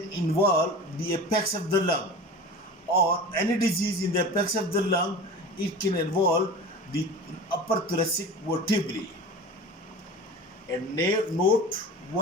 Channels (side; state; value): both; normal; correlation 0.34